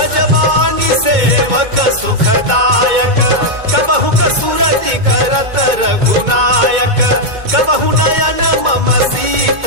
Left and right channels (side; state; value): left; late; 2.2 ms